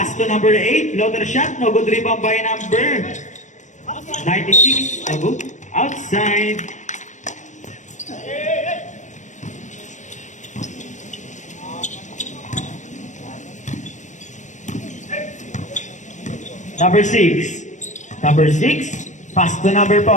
to number 8. Floater shot. No good. Rebound by number 96. No good. Outside. Number 6. Number 6. Pass to number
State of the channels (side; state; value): right; late; 0.35 ms